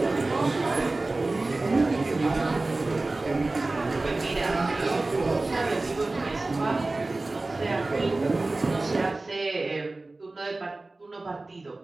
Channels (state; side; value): quieter; left; 3.1 dB